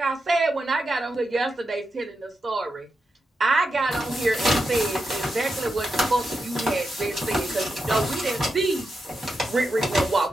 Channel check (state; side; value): normal; both; correlation 0.87